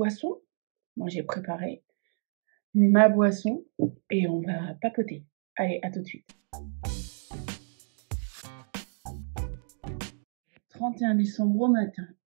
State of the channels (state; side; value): silent; left; 58 dB below the other